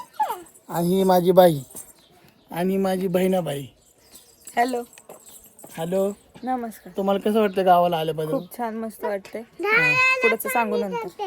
आणि ही माझी बाई, आणि माझी बहिणाबाई. हॅलो हॅलो, नमस्कार. तुम्हाला कसं वाटतं गावाला आल्याबद्दल? खूप छान, मस्त वाटतंय. पुढचं सांगू नंतर.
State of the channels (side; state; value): both; identical; correlation 1.00